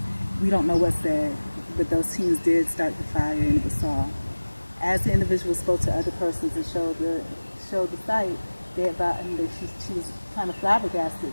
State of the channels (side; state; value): both; inverted; correlation -1.00